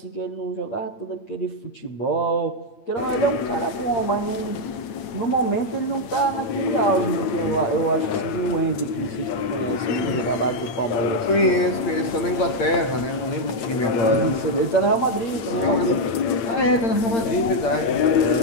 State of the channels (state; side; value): late; right; 8.9 ms